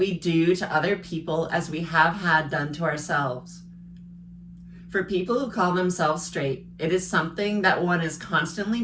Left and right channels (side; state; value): both; identical; correlation 1.00